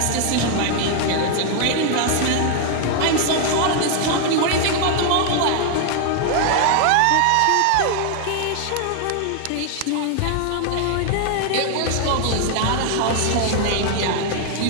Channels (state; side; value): different; both; correlation 0.00